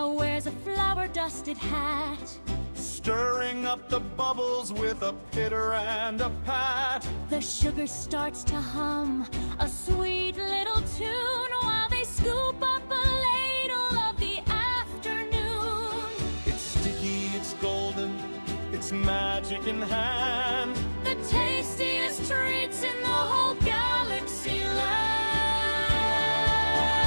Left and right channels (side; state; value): both; inverted; correlation -1.00